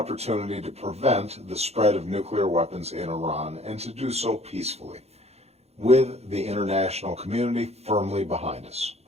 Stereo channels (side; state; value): left; late; 0.31 ms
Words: to prevent the spread of nuclear weapons in Iran and to do so peacefully, with the international community firmly behind us.